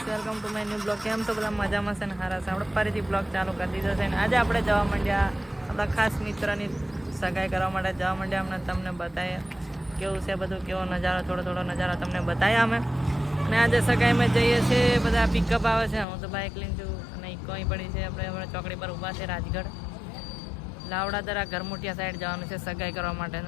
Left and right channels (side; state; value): right; drops out; at 16.1 s